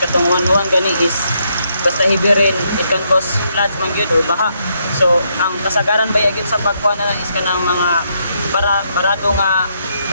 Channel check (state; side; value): inverted; both; correlation -0.76